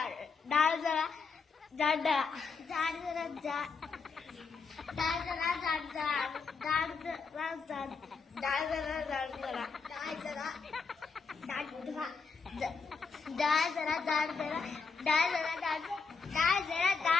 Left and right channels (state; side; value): quieter; right; 5.1 dB